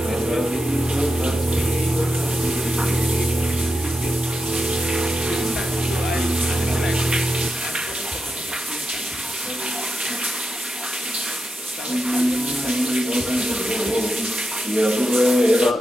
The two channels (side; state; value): both; normal; correlation 0.88